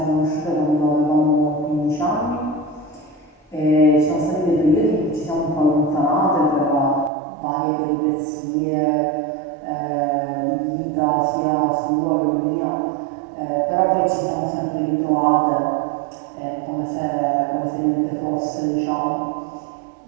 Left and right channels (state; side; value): drops out; left; at 7.1 s